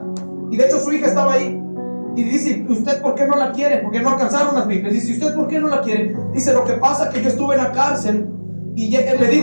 Y de hecho su hija estaba ahí. Y dice: ¿usted por qué no la quiere? Porque no alcanzaron las Biblias. Dice: ¿usted por qué no la quiere? Dice: lo que pasa es que yo estuve en la cárcel. Y le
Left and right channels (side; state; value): both; inverted; correlation -1.00